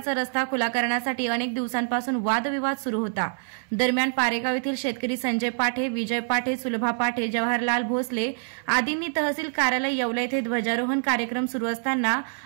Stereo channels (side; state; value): left; silent; 61 dB below the other